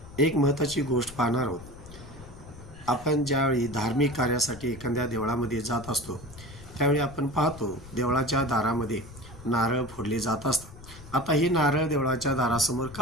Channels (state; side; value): noise; left; rumble, 17 dB below the sound